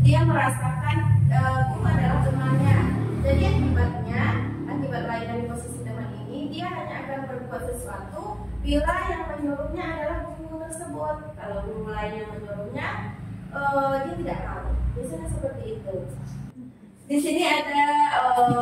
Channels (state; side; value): identical; both; correlation 1.00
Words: dia merasakan guru adalah temannya. Jadi akibat lain dari posisi teman ini, dia hanya akan berbuat sesuatu bila yang menyuruhnya adalah guru tersebut. Kalau guru lain yang menyuruhnya, dia tidak tahu. Biasanya seperti itu. Di sini ada